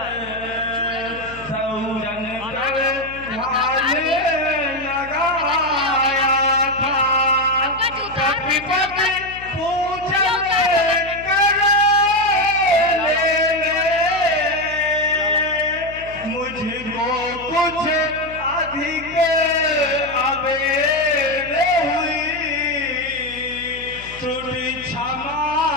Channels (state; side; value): noise; left; hum, 18 dB below the sound